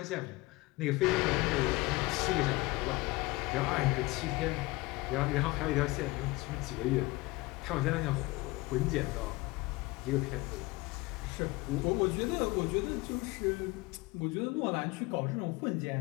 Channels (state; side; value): quieter; right; 22.0 dB